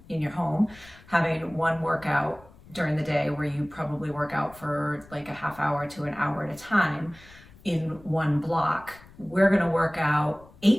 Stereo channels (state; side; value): noise; left; rumble, 23 dB below the sound